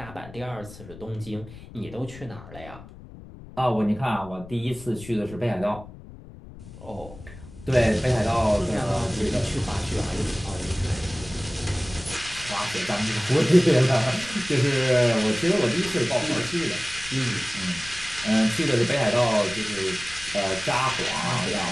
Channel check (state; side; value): noise; left; rumble, 17 dB below the sound